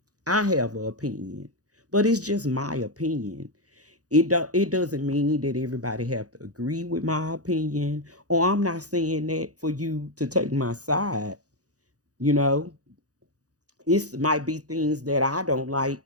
I have an opinion, but it's just my opinion. It doesn't mean that everybody have to agree with my opinion, or I'm not saying that for you to take my side. You know, it might be things that I don't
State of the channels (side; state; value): left; late; 0.67 ms